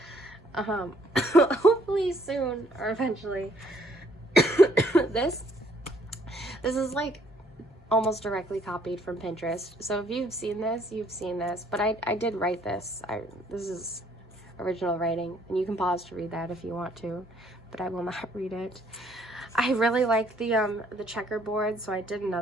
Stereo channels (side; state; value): both; normal; correlation 0.65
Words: Hopefully soon, or eventually. This is like almost directly copied from Pinterest. So if you've seen this, you've seen this. But I did write this. This is original writing, and you can pause to read that if you want to, but I will not read it. I really like the checkerboard, so I did